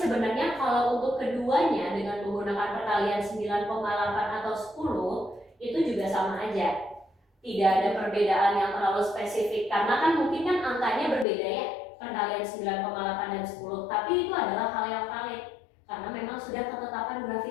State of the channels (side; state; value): right; drops out; at 11.2 s